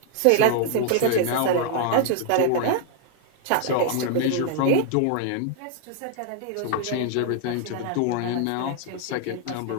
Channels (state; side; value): different; both; correlation 0.00